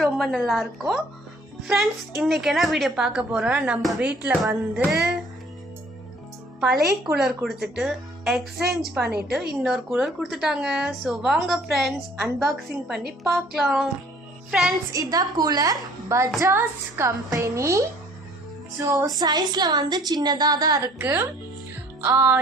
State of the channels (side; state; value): both; normal; correlation 0.56